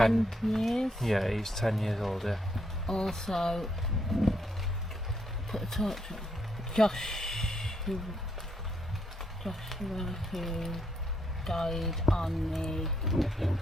years. Yeah, he's 10 years old, yeah. Also, put a torch on Joshua, who died on the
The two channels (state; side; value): normal; both; correlation 0.76